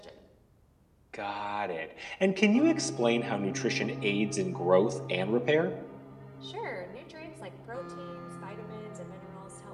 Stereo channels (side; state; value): both; identical; correlation 1.00